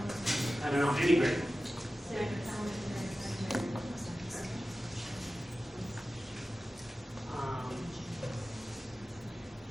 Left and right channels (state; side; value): normal; both; correlation 0.95